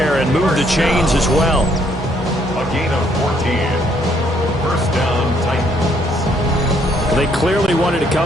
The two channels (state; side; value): normal; both; correlation 0.68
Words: and move the chains as well. A gain of 14. First down, Titans. They clearly wanted to